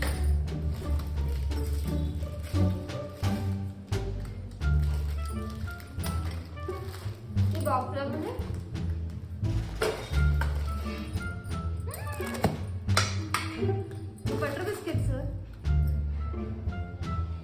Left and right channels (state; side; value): identical; both; correlation 1.00